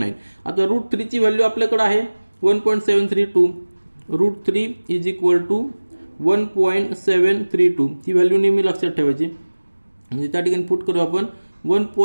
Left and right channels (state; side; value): inverted; both; correlation -1.00